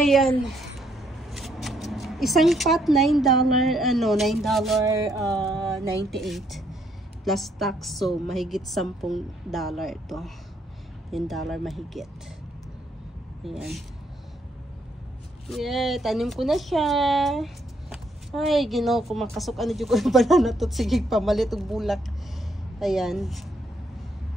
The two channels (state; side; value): normal; both; correlation 0.72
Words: Isang pot, $9.98 plus tax. So, mahigit $10 ito. $10 mahigit. Ayan. Yeah, tanim ko na siya. Ay, ginaw ko makasok. Ano dyan ko yung banana to. Sige, pamalit ang bulak. Ayan.